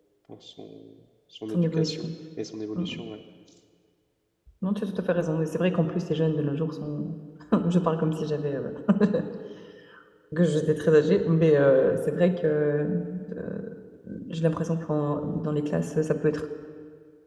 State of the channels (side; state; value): both; identical; correlation 1.00